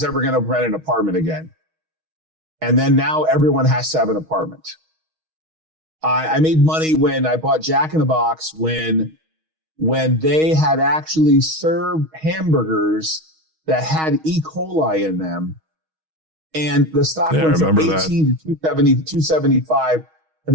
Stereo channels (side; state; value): left; late; 6.3 ms